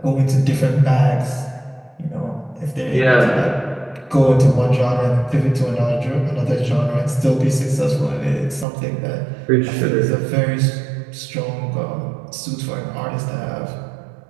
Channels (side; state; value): left; drops out; at 8.7 s